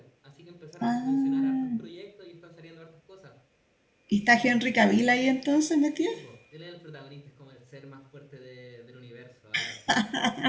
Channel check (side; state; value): both; identical; correlation 1.00